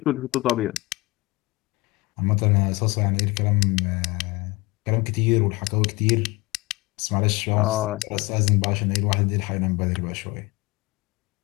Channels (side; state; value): right; quieter; 22.7 dB